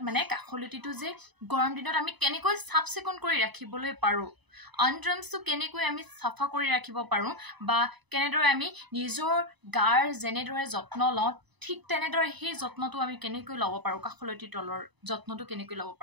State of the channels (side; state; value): left; late; 1.0 ms